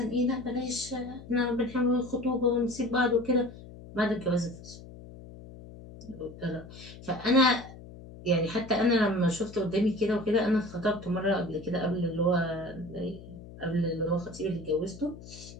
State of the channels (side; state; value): left; noise; hum, 16 dB below the sound